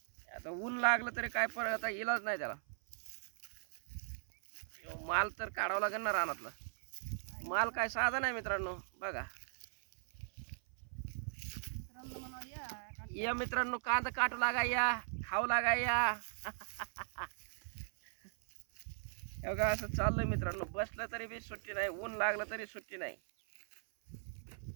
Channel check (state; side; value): silent; left; 52 dB below the other